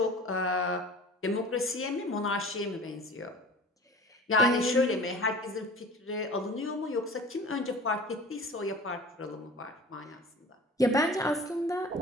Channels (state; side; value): normal; both; correlation 0.41